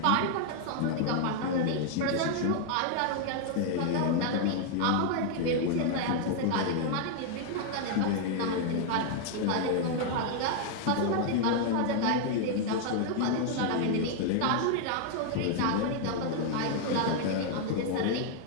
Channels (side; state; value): both; different; correlation 0.00